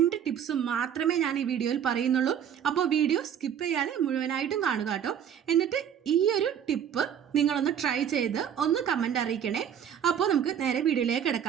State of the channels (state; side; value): quieter; left; 8.9 dB